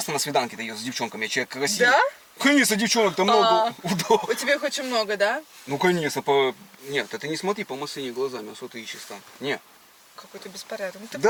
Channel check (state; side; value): identical; both; correlation 1.00